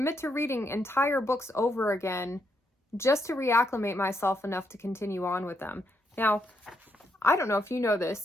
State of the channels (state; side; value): normal; both; correlation 0.78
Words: to reading entire books over again just to reacclimate myself enough to continue on with them. Now, I don't know if you know